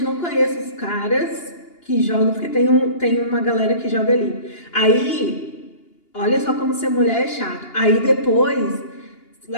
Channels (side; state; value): right; late; 2.8 ms